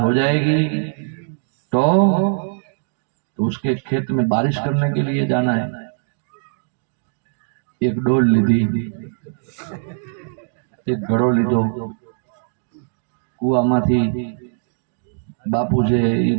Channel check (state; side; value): silent; left; digital silence